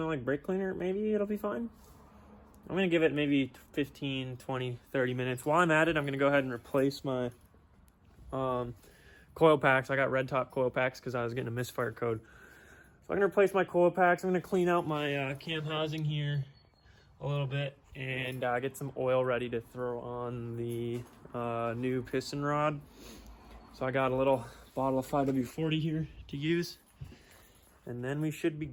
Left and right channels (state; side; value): identical; both; correlation 1.00